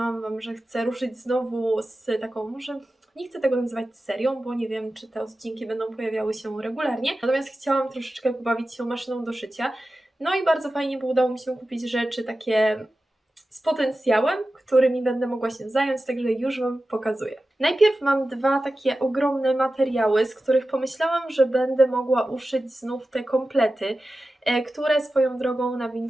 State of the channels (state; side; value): normal; both; correlation 0.94